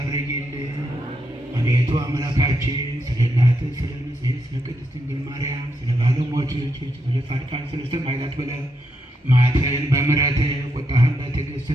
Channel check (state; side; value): normal; both; correlation 0.80